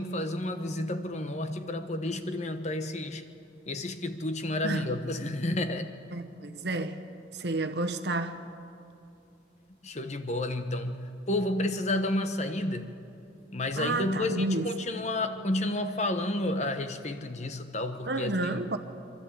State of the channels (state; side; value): normal; both; correlation 0.45